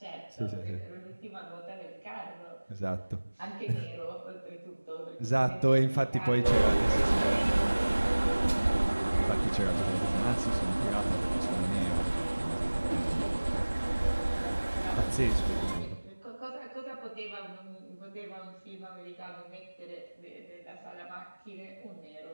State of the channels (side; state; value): both; inverted; correlation -1.00